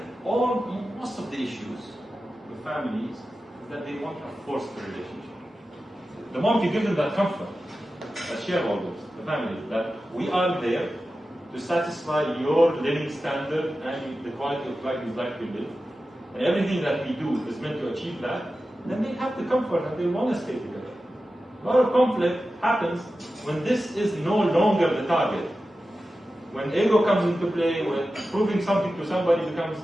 most of the issues with families is that they want a forced relationship. The moment you give them that comfort, as shareholders, the family, that we are there to satisfy your living standard and the quality of life you'd like to live, and everything that we do is meant to achieve that, then they have the comfort that they want to stay together. A lot of conflict happens when this is no longer the target. When ego comes into play, when proving something to somebody becomes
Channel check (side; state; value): both; normal; correlation 0.93